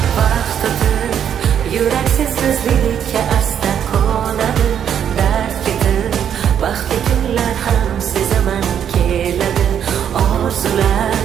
vaqt o'tib yurak sensizlikka asta qo'nadi. Dard ketib baxtli kunlar ham sezaman keladi. Orzular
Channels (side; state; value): left; quieter; 9.0 dB